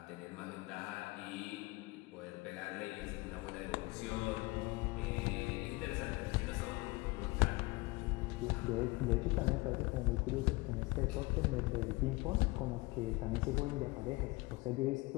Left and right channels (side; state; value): right; quieter; 23.4 dB